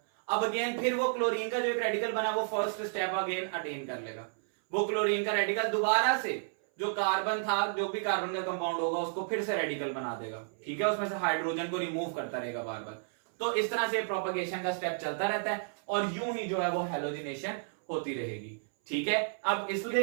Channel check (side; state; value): left; silent; 57 dB below the other